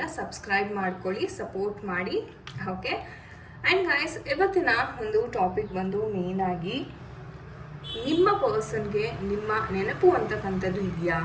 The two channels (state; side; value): identical; both; correlation 1.00